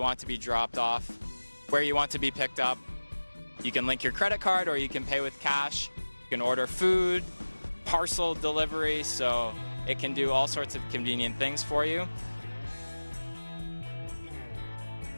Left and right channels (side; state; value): both; inverted; correlation -1.00